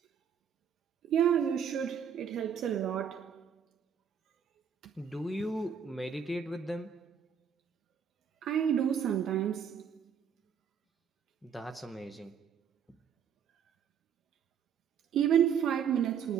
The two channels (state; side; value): quieter; left; 7.7 dB